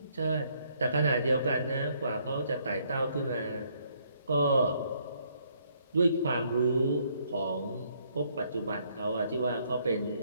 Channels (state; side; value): inverted; both; correlation -0.69